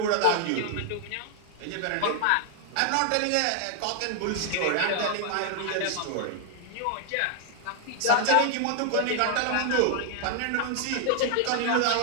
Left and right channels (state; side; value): different; both; correlation 0.00